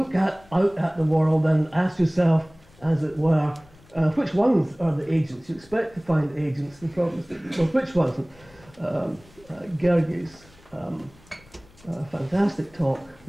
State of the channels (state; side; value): noise; left; rumble, 27 dB below the sound